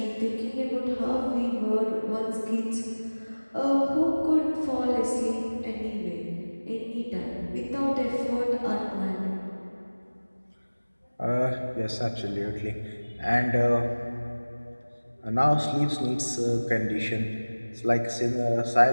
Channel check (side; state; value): both; inverted; correlation -1.00